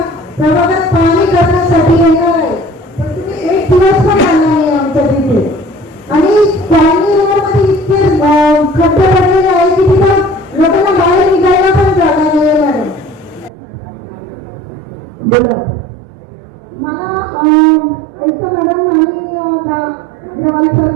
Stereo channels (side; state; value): left; drops out; at 13.5 s